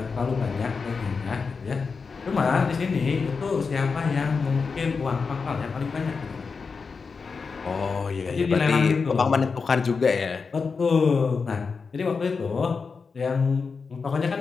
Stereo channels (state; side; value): quieter; right; 5.0 dB